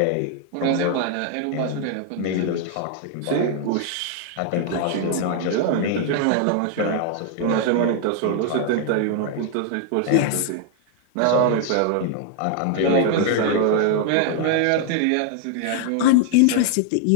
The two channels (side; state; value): both; different; correlation 0.00